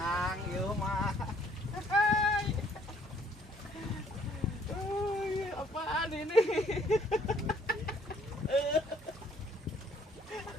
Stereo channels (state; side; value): normal; both; correlation 0.62